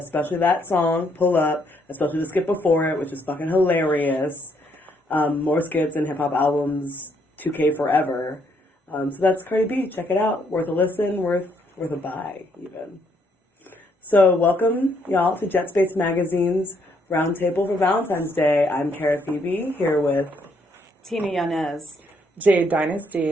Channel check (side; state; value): both; normal; correlation 0.71